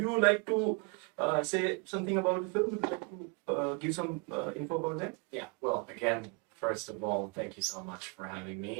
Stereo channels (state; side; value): quieter; left; 31.8 dB